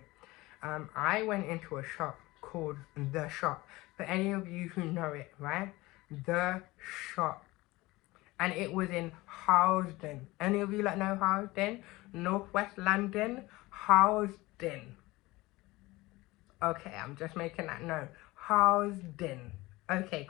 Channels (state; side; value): quieter; right; 20.5 dB